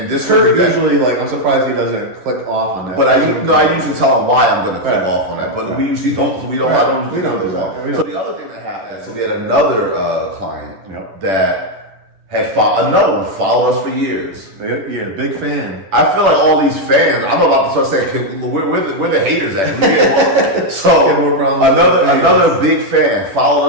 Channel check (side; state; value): left; late; 10 ms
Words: this Kurt usually, like, I'm surprised he doesn't click off on that. But I usually tell him why I'm going to click off on that. But we usually don't. We don't do that. So the other thing that happened, so we had another client that had another one followed us for years. Yeah, big fan. I feel like all these fans, I'm about to start saying, we're the haters at. So another big fan